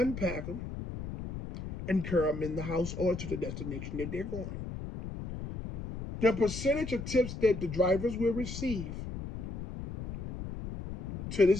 them and carry them in the house or to the destination that they're going. The percentage of tips that the drivers will receive to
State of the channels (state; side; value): noise; left; rumble, 8 dB below the sound